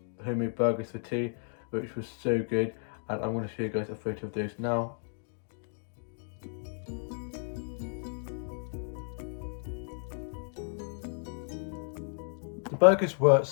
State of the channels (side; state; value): right; silent; 56 dB below the other